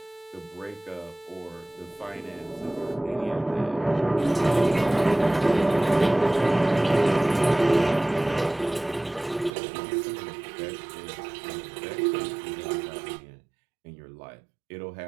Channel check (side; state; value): left; drops out; at 9.5 s